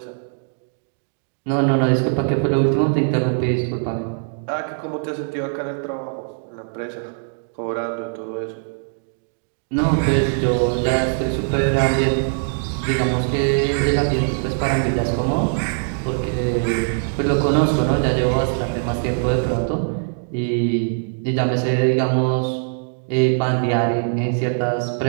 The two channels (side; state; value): left; silent; digital silence